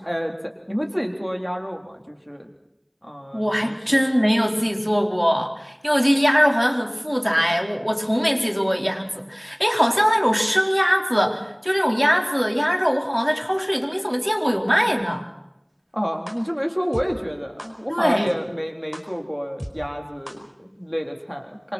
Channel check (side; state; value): both; identical; correlation 1.00